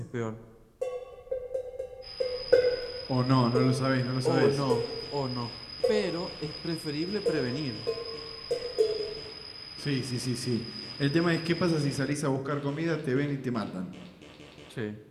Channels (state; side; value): identical; both; correlation 1.00